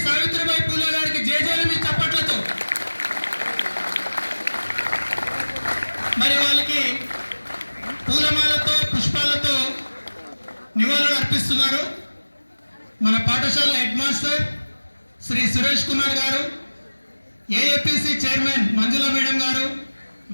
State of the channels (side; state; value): both; inverted; correlation -1.00